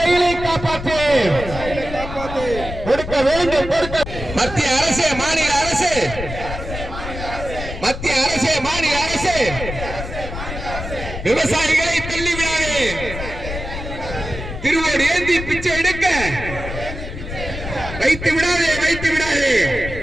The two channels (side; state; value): left; noise; rumble, 8 dB below the sound